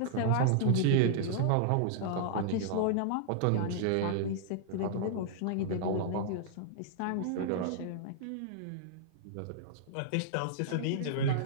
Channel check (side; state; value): both; different; correlation -0.01